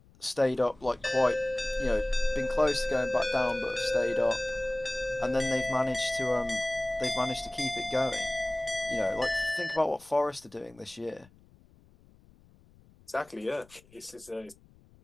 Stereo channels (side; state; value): left; noise; rumble, 28 dB below the sound